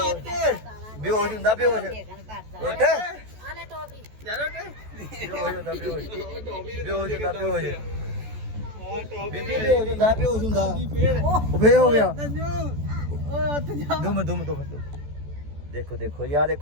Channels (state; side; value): late; left; 14 ms